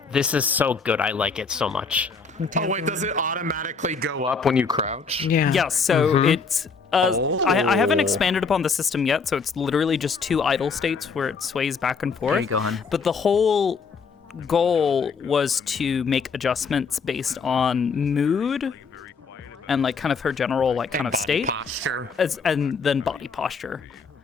This is so good. I like it so much. Oh wait, does it automatically go up when you crouch? Yeah. Yeah, so it's... I haven't expanded upon the system yet, so it's literally just 2 idle states where it sways back and forth. There you go, hon. But the whole goal was to make adjustments based on mood and like kind of her general like kind of state. Posture. And then body posture,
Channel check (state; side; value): quieter; right; 5.1 dB